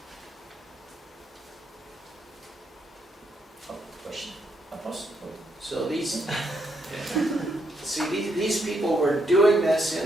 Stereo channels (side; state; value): both; normal; correlation 0.76